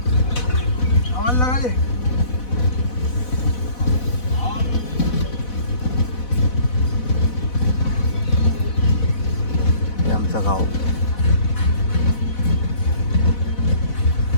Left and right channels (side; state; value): right; late; 4.1 ms